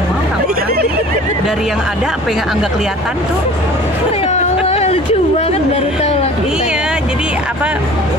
orang-orang. Dari yang ada, apa yang nggak kelihatan tuh. ya Allah, lucu banget baru tahu lah. Iya, jadi apa,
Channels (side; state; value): left; noise; hum, 27 dB below the sound